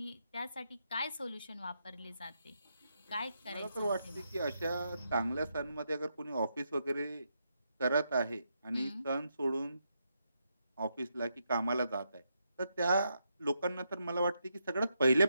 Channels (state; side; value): inverted; both; correlation -0.82